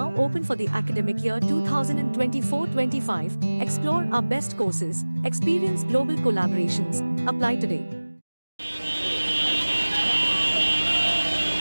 open for the academic year 2024-25. Explore our best courses, experience global collaborations. Apply today.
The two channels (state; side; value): inverted; both; correlation -1.00